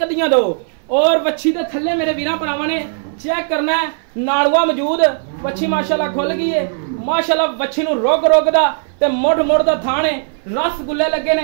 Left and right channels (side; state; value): left; silent; 59 dB below the other